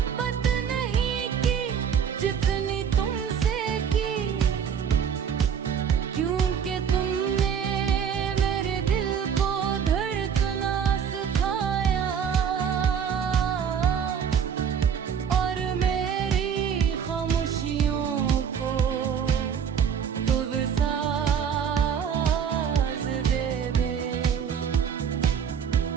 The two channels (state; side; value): quieter; left; 7.6 dB